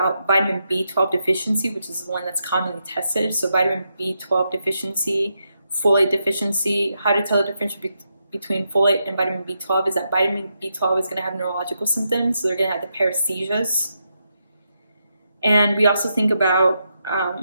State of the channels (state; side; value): inverted; both; correlation -0.83